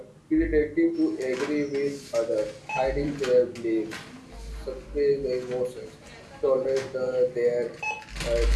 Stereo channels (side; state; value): both; identical; correlation 1.00